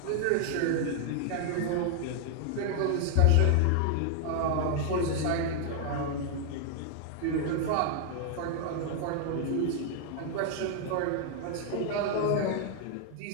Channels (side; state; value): both; different; correlation 0.00